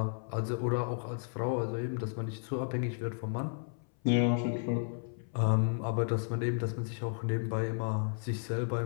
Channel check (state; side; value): silent; right; 56 dB below the other